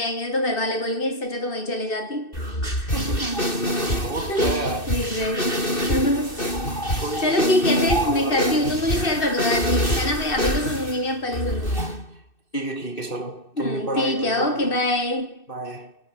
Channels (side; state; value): right; late; 2.6 ms